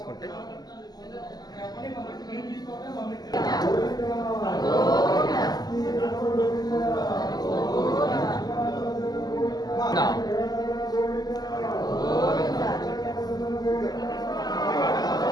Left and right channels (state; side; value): late; right; 0.19 ms